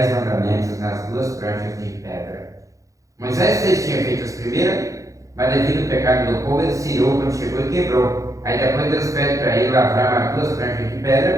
mandamentos nas 2 pranchas de pedra. Moisés tinha feito as primeiras, mas devido ao pecado do povo, ele se irou quando chegou e quebrou. Aí depois Deus pede para ele lavrar mais 2 pranchas de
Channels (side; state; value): left; late; 0.16 ms